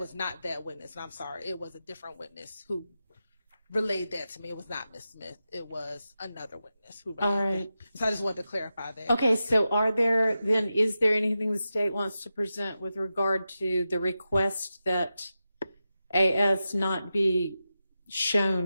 not that witness, and I'm sorry, it was a different witness who relayed that to me. It was not Miss Smith. It was another witness who relayed All right. that. So I just wanted to clarify that. Okay, so is there anything the state wants to present with regard to the request that AS not be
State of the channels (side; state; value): both; inverted; correlation -0.91